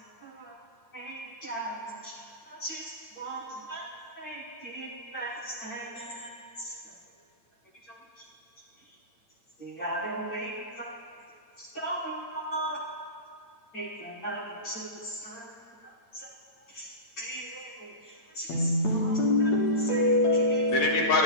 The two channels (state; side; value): late; right; 8.8 ms